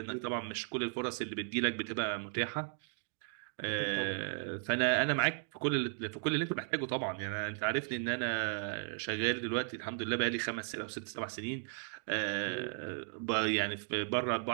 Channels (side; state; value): left; silent; 54 dB below the other